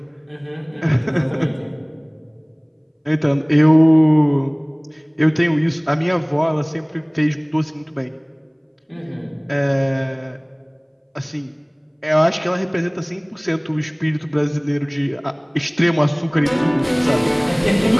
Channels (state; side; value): identical; both; correlation 1.00